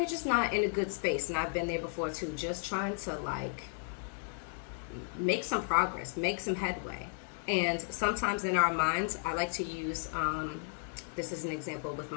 just not in a good space, and I've been there before too, just trying to, like, make some progress, make some headway. And sometimes in our minds, I like to use, this is an example with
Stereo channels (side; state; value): right; silent; 55 dB below the other